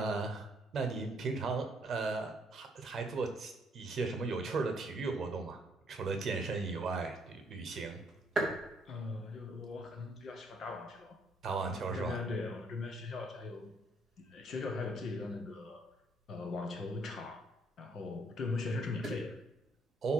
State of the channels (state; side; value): normal; both; correlation 0.68